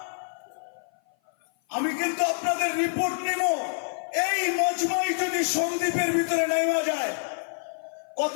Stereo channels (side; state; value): right; silent; 55 dB below the other